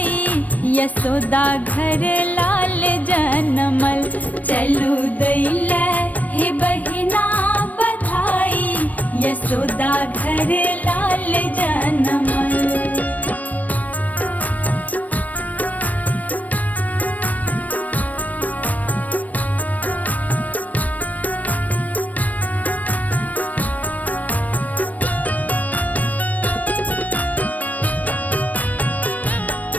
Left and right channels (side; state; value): right; late; 0.074 ms